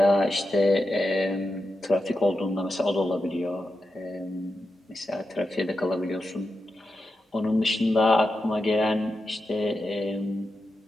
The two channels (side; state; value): both; normal; correlation 0.88